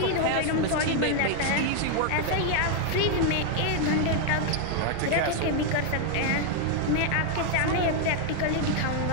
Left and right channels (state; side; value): different; both; correlation 0.00